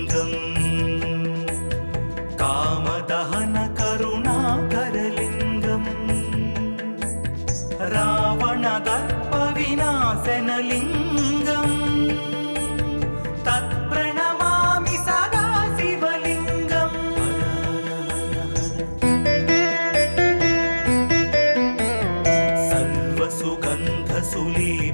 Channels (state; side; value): inverted; both; correlation -1.00